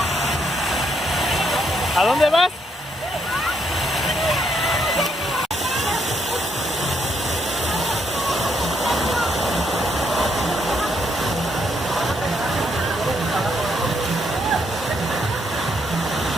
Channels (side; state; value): both; normal; correlation 0.74